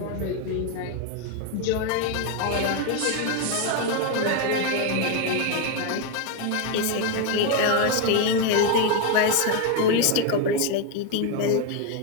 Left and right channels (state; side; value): different; both; correlation 0.01